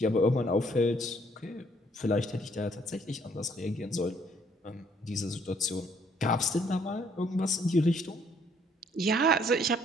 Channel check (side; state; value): both; normal; correlation 0.65